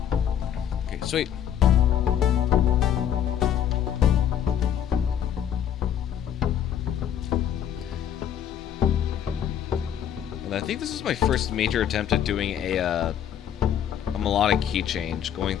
Okay, sweet. And I think this is my first major attempt at doing a melodic key change, going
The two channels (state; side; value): quieter; right; 9.6 dB